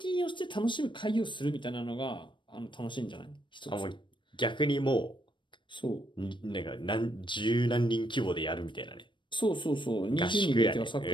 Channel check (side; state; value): right; late; 0.23 ms